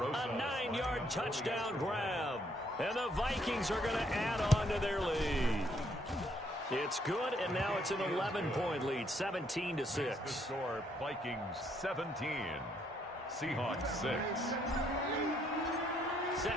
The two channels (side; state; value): both; normal; correlation 0.70